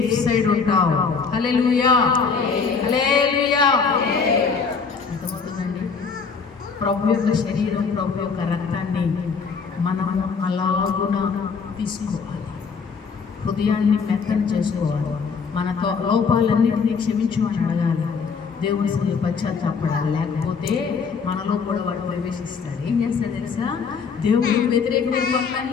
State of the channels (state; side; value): quieter; right; 5.5 dB